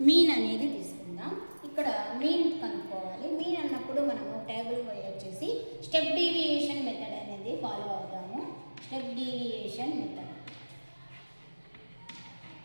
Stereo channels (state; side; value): inverted; both; correlation -1.00